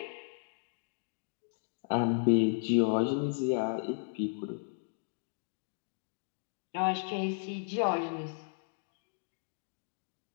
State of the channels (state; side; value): silent; right; digital silence